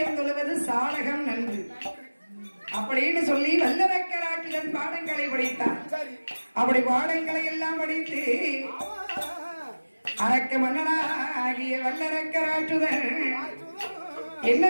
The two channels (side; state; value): both; inverted; correlation -1.00